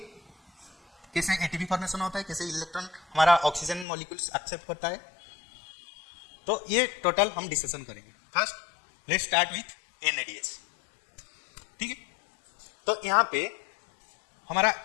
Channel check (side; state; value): right; drops out; at 3.9 s